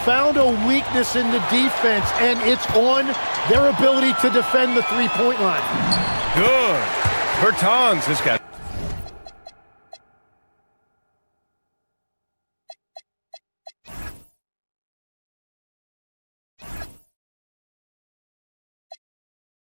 a weakness in the defense, and it's on their ability to defend the three-point line. Good. Bertans has got.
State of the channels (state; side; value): inverted; both; correlation -1.00